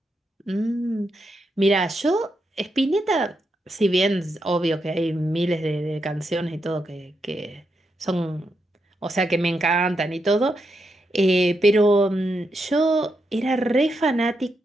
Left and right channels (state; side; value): normal; both; correlation 0.83